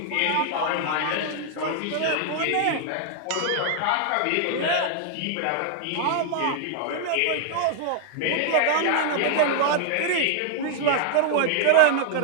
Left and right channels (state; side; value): different; both; correlation 0.00